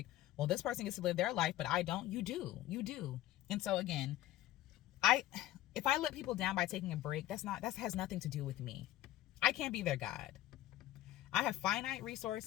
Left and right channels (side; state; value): right; quieter; 14.4 dB